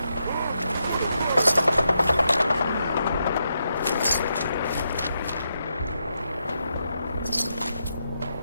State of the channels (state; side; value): inverted; both; correlation -0.83